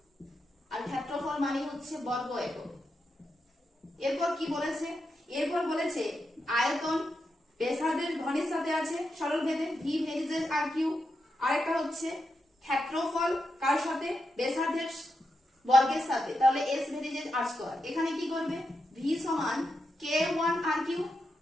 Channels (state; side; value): normal; both; correlation 0.86